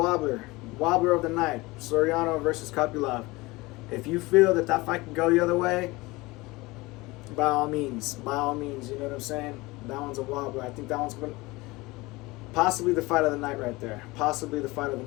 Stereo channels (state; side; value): quieter; right; 22.0 dB